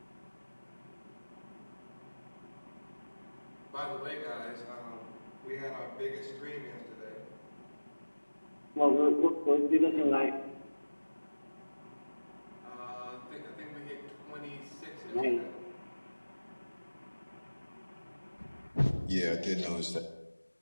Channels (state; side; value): inverted; both; correlation -1.00